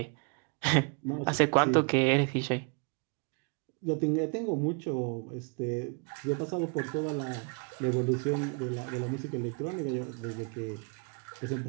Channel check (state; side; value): quieter; left; 34.7 dB